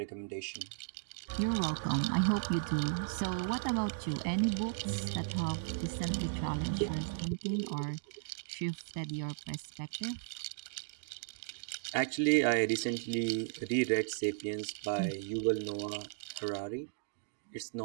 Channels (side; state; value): left; silent; digital silence